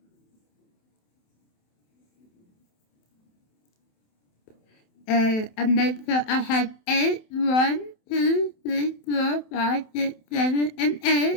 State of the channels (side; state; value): right; late; 27 ms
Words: And I make sure I have 8, 1, 2, 3, 4, 5, 6, 7, and